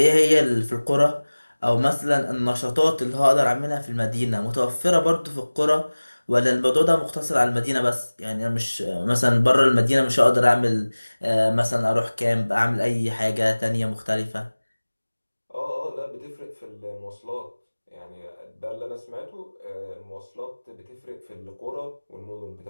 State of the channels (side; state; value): both; inverted; correlation -1.00